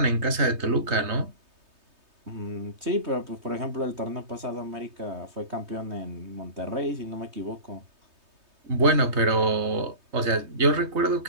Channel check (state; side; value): late; left; 3.2 ms